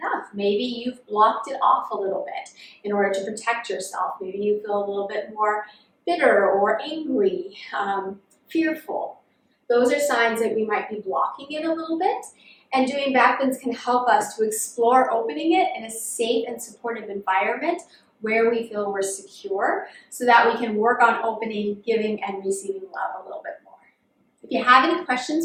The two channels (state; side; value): identical; both; correlation 1.00